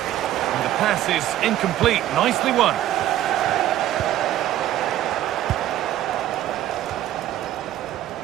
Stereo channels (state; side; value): quieter; left; 12.9 dB